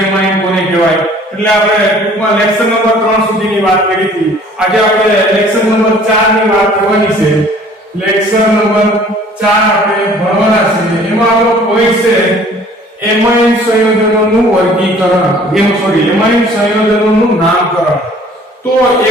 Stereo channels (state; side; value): normal; both; correlation 0.53